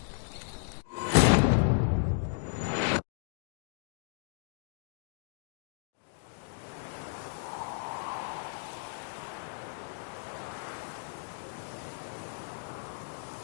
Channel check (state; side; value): silent; right; digital silence